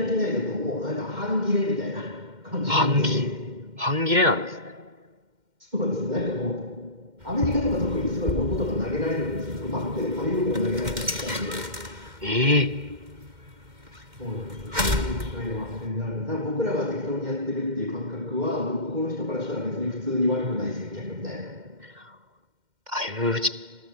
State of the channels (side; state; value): left; late; 2.1 ms